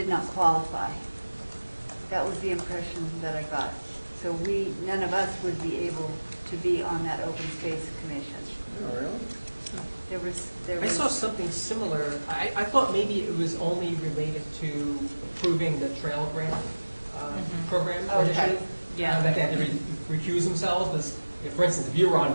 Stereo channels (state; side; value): inverted; both; correlation -1.00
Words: not qualify. That was the impression that I got. So none of us would be able to be on that open space commission. Oh, really? I saw something similar. I thought maybe it was only related to approving the trail grant program or Okay. initiative. Yeah. That they had to recuse themselves. Because, for instance, if you were on